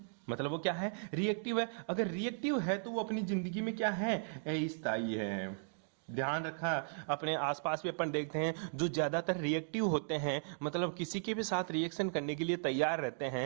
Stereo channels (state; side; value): silent; left; digital silence